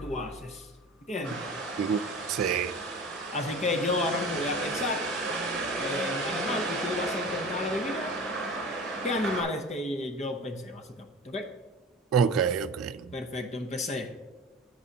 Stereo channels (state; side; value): normal; both; correlation 0.36